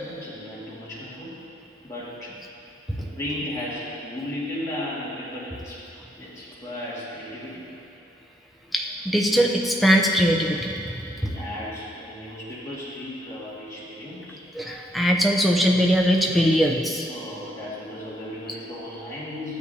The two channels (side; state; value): both; normal; correlation 0.74